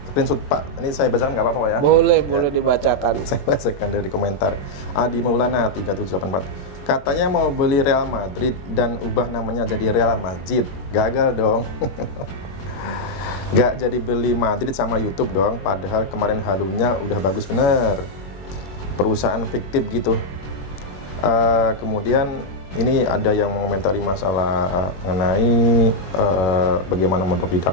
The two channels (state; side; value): late; right; 21 ms